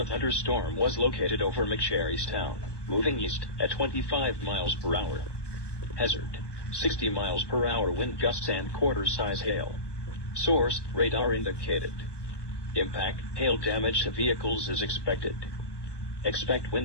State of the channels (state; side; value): late; right; 1.2 ms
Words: thunderstorm was located over McSherrystown, moving east at 25 miles per hour. Hazard: 60 miles per hour wind gusts and quarter-size hail. Source: radar indicated. Impact: hail damage to vehicles is expected. Expect